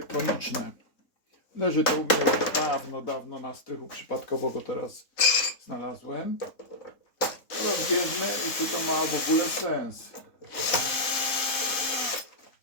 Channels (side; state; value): right; late; 3.8 ms